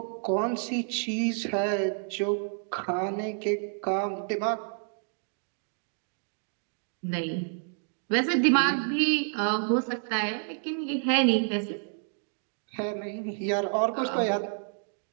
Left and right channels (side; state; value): left; silent; 58 dB below the other